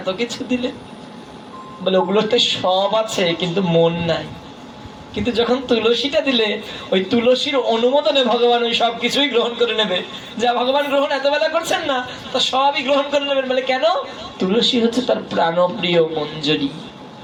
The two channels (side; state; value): both; identical; correlation 1.00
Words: কিছু দিলে। বলে ওগুলোতে সব আছে কিন্তু মন নাই। কিন্তু যখন তুলসীটা দিলে ওই তুলসীর অনুমোদনে ভগবান ওই সব কিছুই গ্রহণ করে নেবে। যা ভগবান গ্রহণ এত বেলা করছেন না, তা সবই গ্রহণ করে নেবেন। বলে কেন? তুলসী হচ্ছে তার প্রাণপ্রিয় মঞ্জরি,